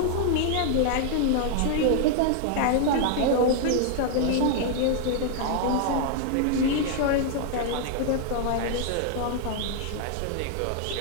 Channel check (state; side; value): different; both; correlation 0.00